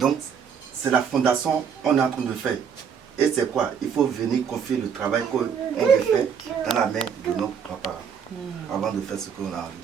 c'est la fondation qu'on est en train de faire. Et c'est quoi? Il faut venir confier le travail qu'on veut faire dans la main de nos papas avant de faire ce qu'on a envie de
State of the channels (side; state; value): left; quieter; 7.2 dB